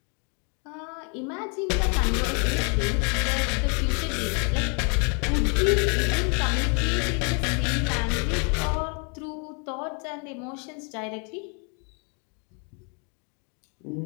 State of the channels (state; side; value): quieter; right; 37.4 dB